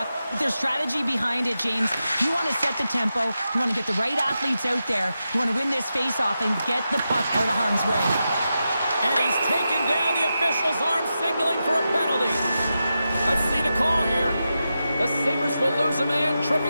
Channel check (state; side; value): inverted; both; correlation -0.89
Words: But there's strategy behind it, James. You want to set the tempo. You want to get the right athletes out there. You want to win this face-off and get the puck out of harm's way. And he's taken down the official's arm, signaling for a penalty. Let's see the call here. The Sabres will lose a man,